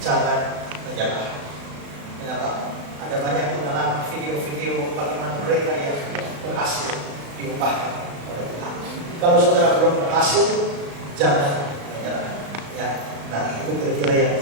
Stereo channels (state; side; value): late; left; 35 ms